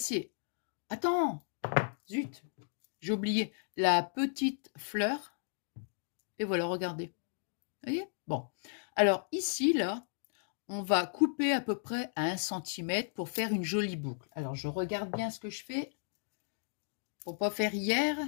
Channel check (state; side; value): silent; right; digital silence